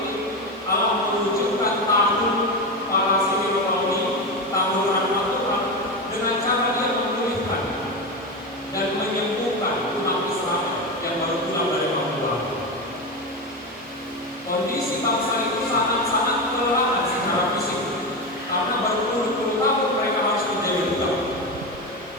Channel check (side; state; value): both; normal; correlation 0.17